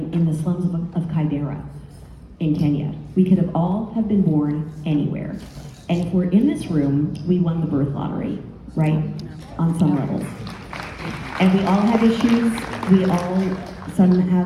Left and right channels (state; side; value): identical; both; correlation 1.00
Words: the slums of Kibera in Kenya. We could have all have been born anywhere. And if we're in this room, we won the birth lottery, right? On some levels. And we all have issues. Some